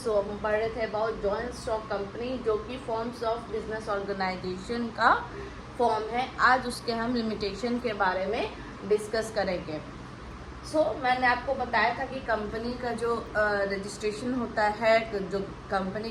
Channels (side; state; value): both; identical; correlation 1.00